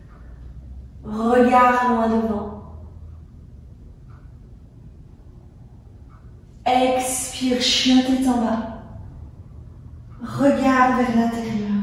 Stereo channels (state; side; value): identical; both; correlation 1.00